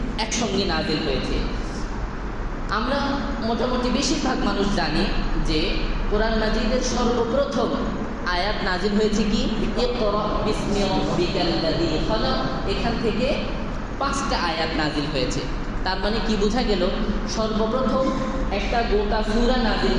একসঙ্গে নাজিল হয়েছে। আমরা মোটামুটি বেশিরভাগ মানুষ জানি যে কোরআন মাজিদের সর্বপ্রথম আয়াত নাজিল হয়েছে কি, ইকরা বিসমি রাব্বিকাল্লাযী খালাক। এখান থেকে 5টা আয়াত নাজিল হয়েছে। তার মানে কি বোঝা গেল, সর্বপ্রথম একটা গোটা সূরা নাজিল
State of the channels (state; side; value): identical; both; correlation 1.00